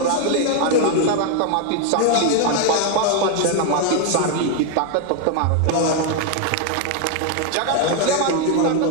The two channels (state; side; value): different; both; correlation 0.01